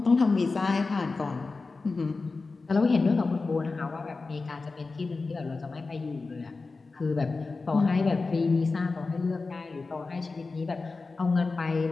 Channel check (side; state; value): right; quieter; 3.9 dB